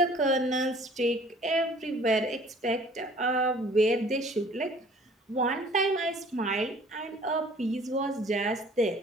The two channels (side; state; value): both; normal; correlation 0.53